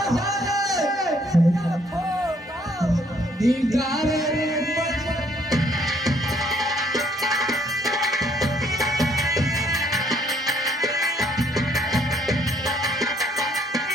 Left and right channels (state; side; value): normal; both; correlation 0.66